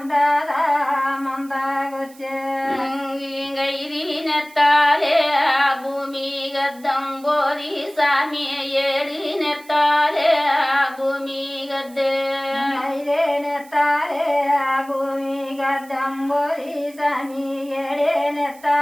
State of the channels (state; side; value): noise; right; hiss, 24 dB below the sound